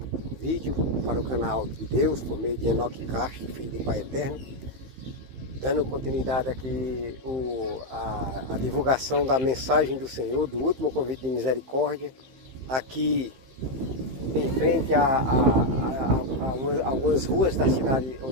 vídeo para o canal de Deus, por meio de Enoque Castro, filho do Pai Eterno, dando continuidade aqui a divulgação da mensagem do Senhor, do último convite de misericórdia, aqui em frente a algumas ruas da cidade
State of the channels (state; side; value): late; left; 15 ms